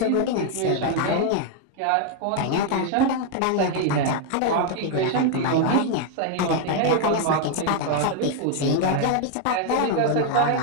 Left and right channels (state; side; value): different; both; correlation 0.00